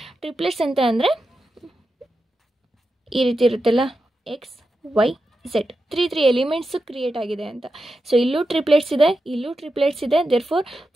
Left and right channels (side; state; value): both; normal; correlation 0.89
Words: ಟ್ರಿಪ್ಲೆಟ್ಸ್ ಅಂತ ಅಂದರೆ ಈ ರೀತಿ ಇರುತ್ತಲ್ಲ, x y z 3 elements create ಆಗಿದೆ ಅಂತ. ಸೊ ಇಲ್ಲೂ ಟ್ರಿಪ್ಲೆಟ್ಸ್ ಇದೆ, ಇಲ್ಲೂ ಟ್ರಿಪ್ಲೆಟ್ಸ್ ಇದೆ. ದೇರ್ಫೋರ್